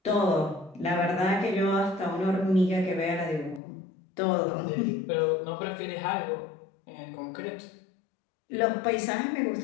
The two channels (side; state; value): right; drops out; at 3.6 s